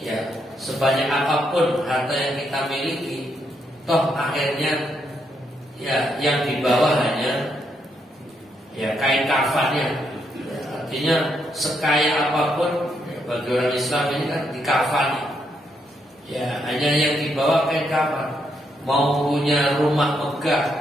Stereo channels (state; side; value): normal; both; correlation 0.77